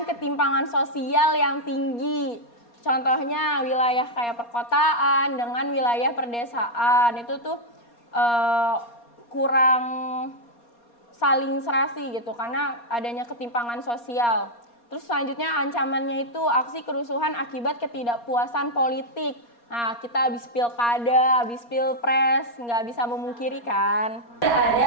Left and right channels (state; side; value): late; right; 4.2 ms